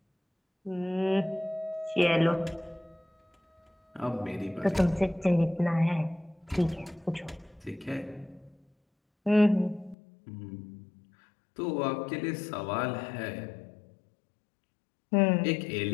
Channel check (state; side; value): drops out; right; at 10.0 s